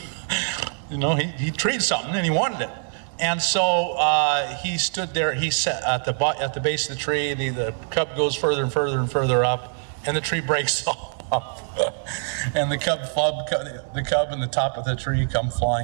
something, and he wanted it. And so he stood there. He sat at the base of the tree. The cub goes further and further and further up, and the tree breaks off. And the cub and the top of the tree come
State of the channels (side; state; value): left; silent; 63 dB below the other